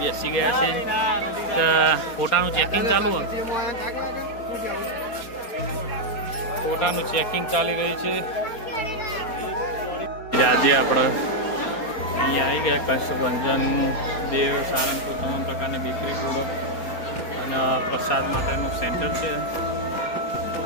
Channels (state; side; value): late; right; 4.3 ms